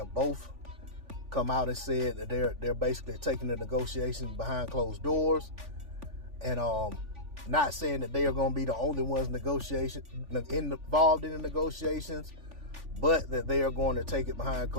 both come out and said that they're basically taking the negotiations behind closed doors, and not saying that they are going to be the only ones involved in the negotiations, but that they are going to take it behind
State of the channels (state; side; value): late; left; 3.5 ms